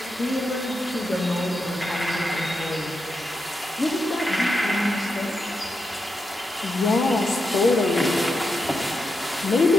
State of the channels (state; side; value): normal; both; correlation 0.86